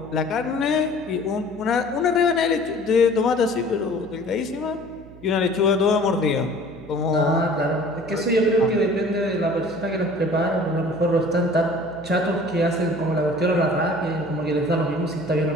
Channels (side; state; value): right; noise; hum, 20 dB below the sound